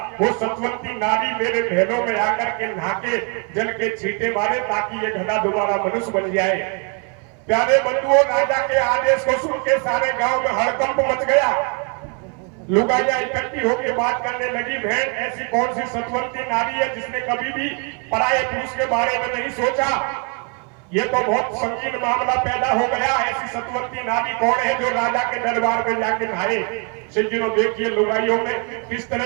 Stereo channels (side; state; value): left; quieter; 37.4 dB